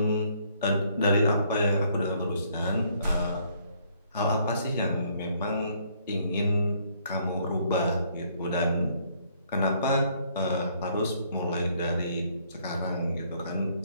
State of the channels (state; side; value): inverted; both; correlation -0.66